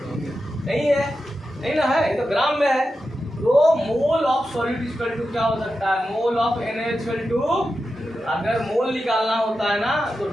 नहीं है, नहीं ना है, ये तो ग्राम में है। तो mole of solid equal to क्या हो सकता है, mole of NaOH equal to, अगर मोल निकालना होता है ना तो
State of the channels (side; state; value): both; normal; correlation 0.90